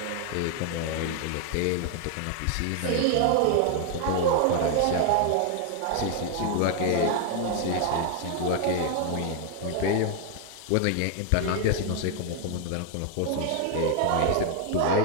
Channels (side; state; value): both; different; correlation 0.01